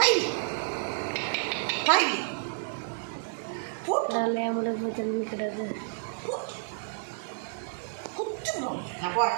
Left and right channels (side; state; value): left; silent; digital silence